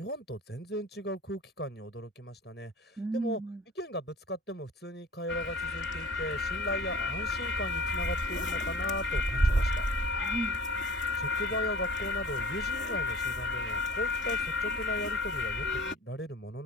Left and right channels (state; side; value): normal; both; correlation 0.45